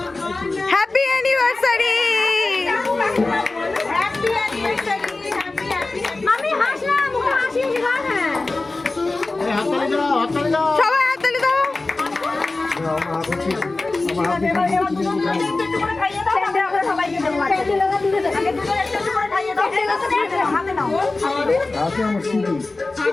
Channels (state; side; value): quieter; right; 3.3 dB